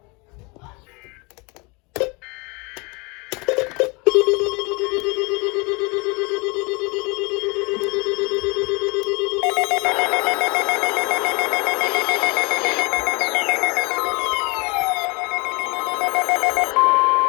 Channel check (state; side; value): quieter; right; 28.4 dB